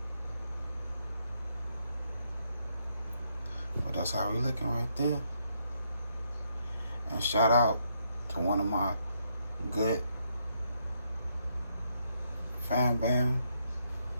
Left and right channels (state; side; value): inverted; both; correlation -0.76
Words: But that's how we looking right there. And shout out to one of my good fan bam